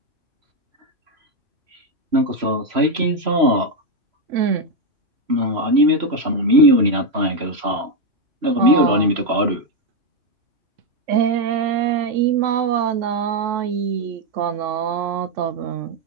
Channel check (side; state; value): left; late; 3.0 ms